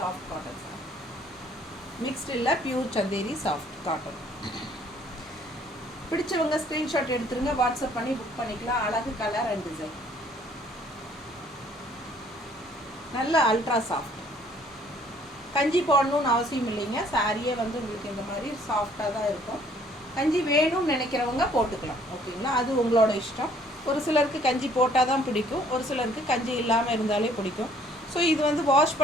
cotton sir. Mixed இல்லை, பியூர் சந்தேரி சாஃப்ட் காட்டன். பிடிச்சவங்க ஸ்க்ரீன்ஷாட் எடுத்துருங்க, வாட்ஸ்அப் பண்ணி புக் பண்ணிக்கலாம். அழகு கலர் அண்ட் டிசைன். நல்ல அல்ட்ரா சாஃப்ட். கஞ்சி போடணும்னு அவசியம் இல்லைங்க. சாரியே வந்து உங்களுக்கு இந்த மாதிரி சாஃப்டாக தான் இருக்கும். கஞ்சி வேணும்னு நினைக்கிறவங்க போட்டுக்கலாம். ஓகேங்களா? அது உங்களோட இஷ்டம். ஒரு சிலருக்கு கஞ்சி போட்டால் தான் பிடிக்கும், ஒரு சிலருக்கு கஞ்சி இல்லாமல் இருந்தாலே பிடிக்கும். ஸோ இது வந்து வாஷ்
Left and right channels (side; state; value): both; normal; correlation 0.60